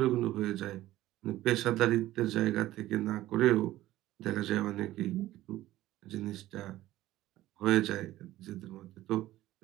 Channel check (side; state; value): left; quieter; 15.4 dB